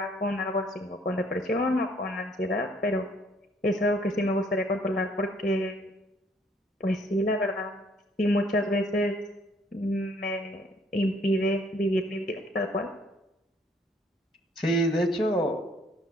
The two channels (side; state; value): both; normal; correlation 0.63